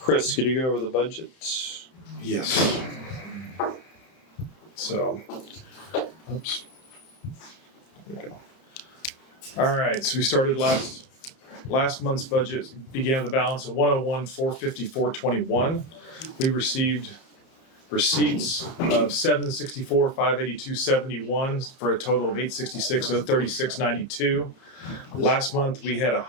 could you go over the budget? Yes. So, oops. There we go. All right, so we started last month's budget began with a balance of 101,454.21. We received receipts of 764,582.71 for a total of 866,036.92. Last month we had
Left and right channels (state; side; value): late; right; 31 ms